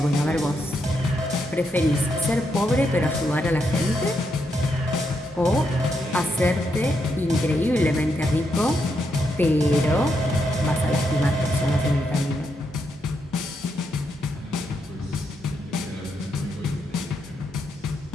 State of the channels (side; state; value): both; normal; correlation 0.80